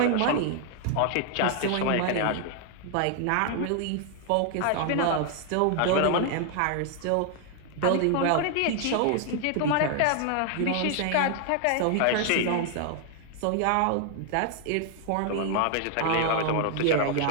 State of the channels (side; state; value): both; different; correlation 0.00